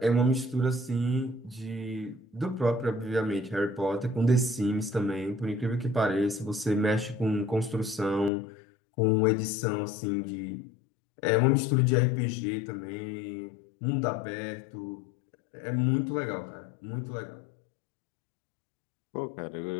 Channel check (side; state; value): right; drops out; at 8.3 s